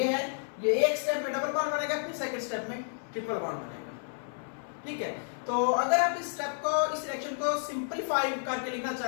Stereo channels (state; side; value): silent; right; 57 dB below the other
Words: है, ये एक स्टेप में डबल बॉन्ड बनेगा, फिर सेकंड स्टेप में ट्रिपल बॉन्ड बनेगा, ठीक है। तो अगर आप इस स्टेप को, इस रिएक्शन को सिंपलीफाई करके लिखना